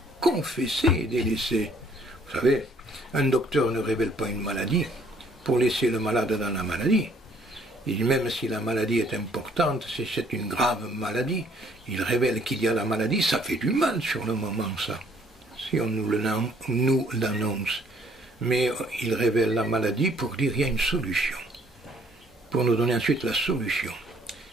confesser et délaisser. Vous savez, un docteur ne révèle pas une maladie pour laisser le malade dans la maladie. Et même si la maladie est importante, si c'est une grave maladie, il révèle qu'il y a la maladie, ça fait du mal sur le moment, ça. Si on nous l'annonce. Mais il révèle la maladie pour dire qu'il y a une solution. Pour nous donner ensuite la solution.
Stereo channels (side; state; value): both; normal; correlation 0.62